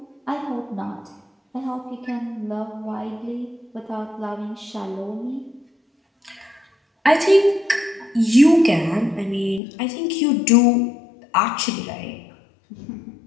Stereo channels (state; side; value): drops out; right; at 9.6 s